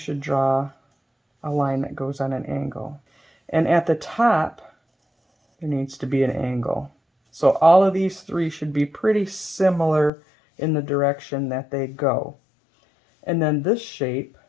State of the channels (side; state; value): right; drops out; at 10.1 s